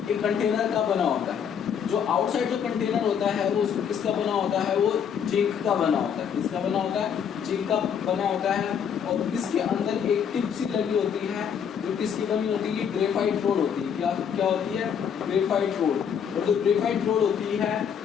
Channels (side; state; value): right; quieter; 7.8 dB